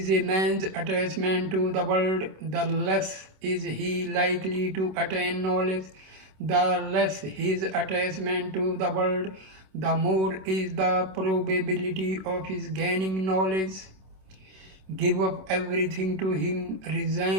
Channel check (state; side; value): late; left; 26 ms